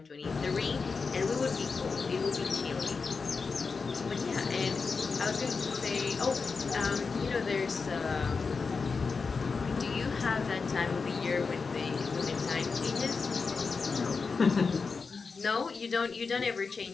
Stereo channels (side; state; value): right; quieter; 4.8 dB